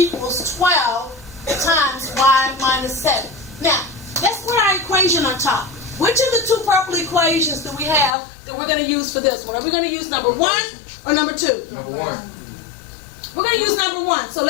12 times y minus 7. Now, let's put our equation on top. Which of the two purple equations do we have that we're going to use for this one? Are we going to use number 1 or number 2? Number 1. We're going to use number 1, so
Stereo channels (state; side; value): drops out; right; at 8.2 s